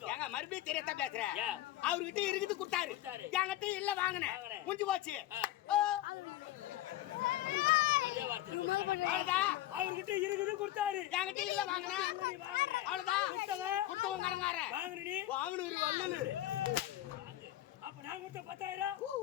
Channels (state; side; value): quieter; right; 14.7 dB